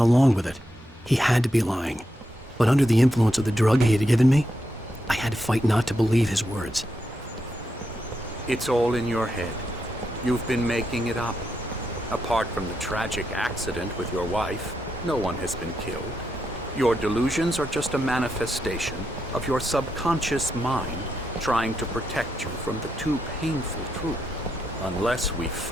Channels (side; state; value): both; normal; correlation 0.83